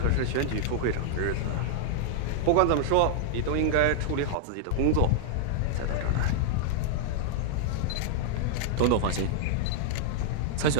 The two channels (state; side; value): different; both; correlation -0.01